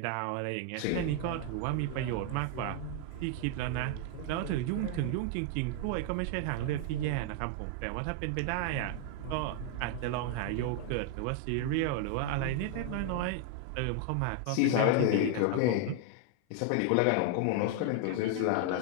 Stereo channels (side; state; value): both; different; correlation 0.00